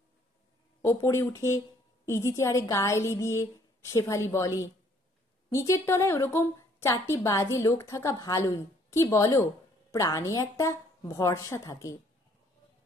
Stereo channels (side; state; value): both; normal; correlation 0.63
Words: ওপরে উঠে ইজি চেয়ারে গা এলি দিয়ে শেফালি বলে, নিচের তলায় ওরকম 4টি বাজে লোক থাকা ভালোই, কি বলো? প্রাণে একটা ভরসা থাকে।